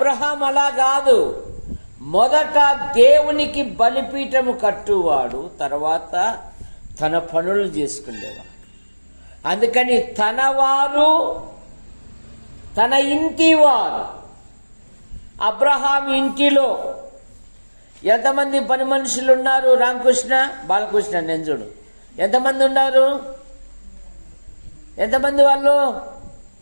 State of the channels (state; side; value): inverted; both; correlation -1.00